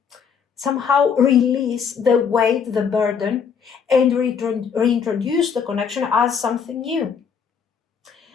somehow release the weight, the burden, and reintroduce the connection as something new.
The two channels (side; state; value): right; quieter; 6.7 dB